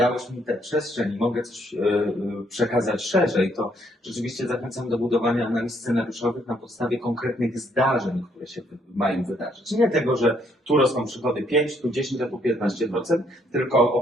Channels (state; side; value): normal; both; correlation 0.69